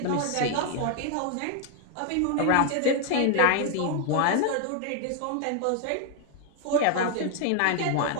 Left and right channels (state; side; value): different; both; correlation 0.00